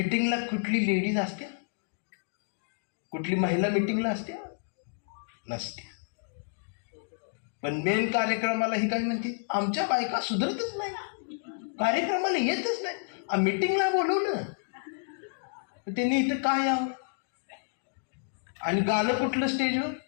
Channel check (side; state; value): right; silent; digital silence